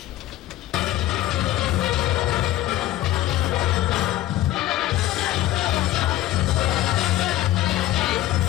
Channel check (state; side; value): quieter; right; 14.3 dB